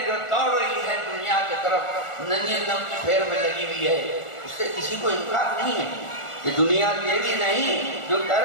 جو دوڑ رہی ہے دنیا کی طرف، ننھی نم کی پھیر میں لگی ہوئی ہے، اس سے کسی کو انکار نہیں ہے، یہ دنیا تیری نہیں، جو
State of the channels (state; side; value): late; right; 1.4 ms